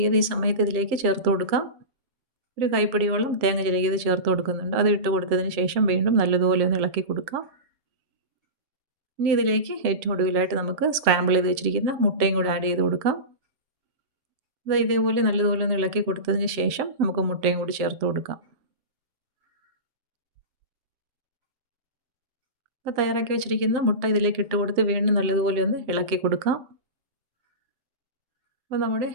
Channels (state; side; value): late; left; 7.8 ms